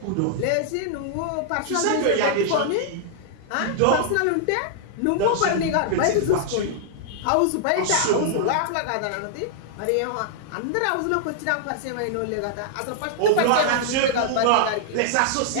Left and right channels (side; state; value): both; different; correlation -0.01